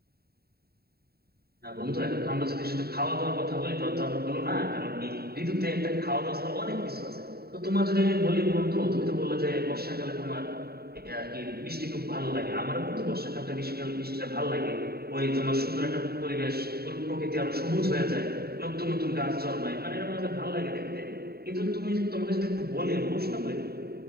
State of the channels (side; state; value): left; late; 0.45 ms